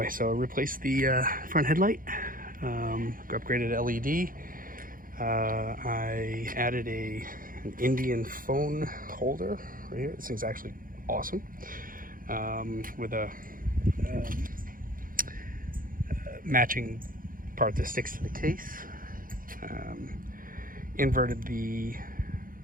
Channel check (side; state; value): left; late; 0.40 ms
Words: so I replaced the front headlight, upgraded LED. I added an Indian phone holder right here. This thing's actually awesome, with a matching part that sticks to the case. Inverted the